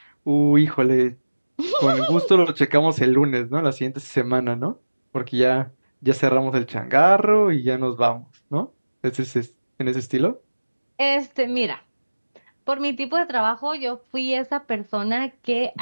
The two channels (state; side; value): inverted; both; correlation -1.00